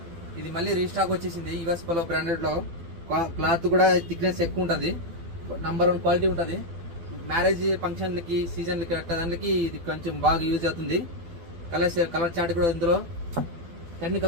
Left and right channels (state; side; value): late; left; 12 ms